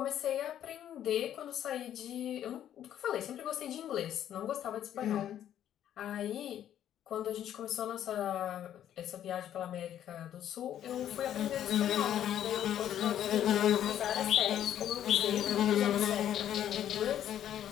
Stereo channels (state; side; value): quieter; right; 10.8 dB